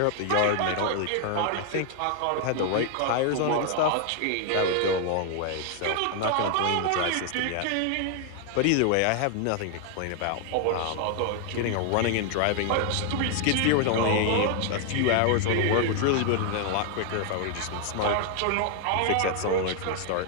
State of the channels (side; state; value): both; different; correlation 0.00